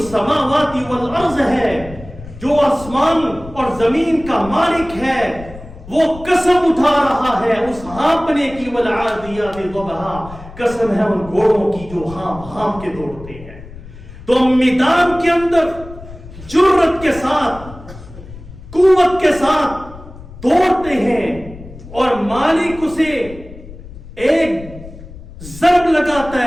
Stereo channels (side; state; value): left; noise; rumble, 16 dB below the sound